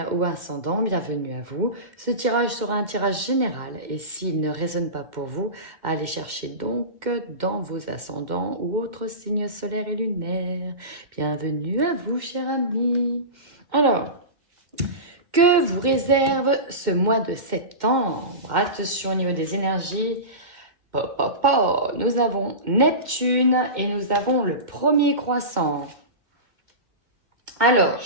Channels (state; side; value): late; left; 2.1 ms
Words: ou ascendant, bienvenue à vous. Ce tirage sera un tirage général et s'il ne résonne pas pour vous, allez chercher donc dans vos ascendants ou autres signes solaires et lunaires. Bienvenue à vous, chers amis. Alors, que vous réserve ce mois de septembre? Attention au niveau des énergies. Nous avons Neptune et nous avons le premier croissant. Alors,